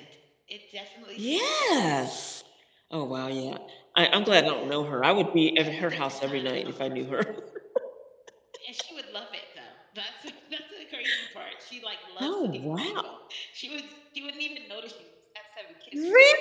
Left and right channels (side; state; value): both; identical; correlation 1.00